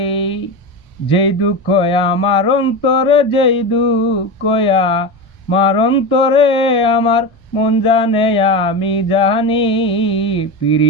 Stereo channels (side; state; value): both; normal; correlation 0.21